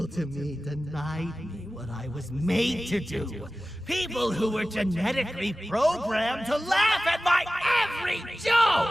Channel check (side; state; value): both; normal; correlation 0.96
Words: to me denied me what I was made to do. People who were genetically programmed to laugh at my every